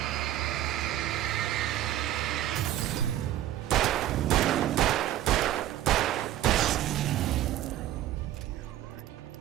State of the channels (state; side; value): quieter; left; 13.0 dB